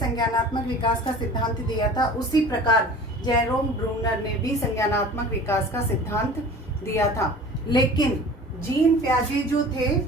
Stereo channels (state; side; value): normal; both; correlation 0.42